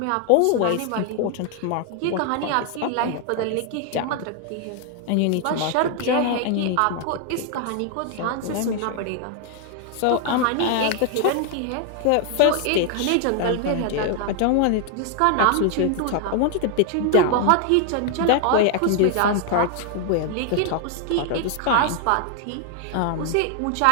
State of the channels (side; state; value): both; different; correlation 0.00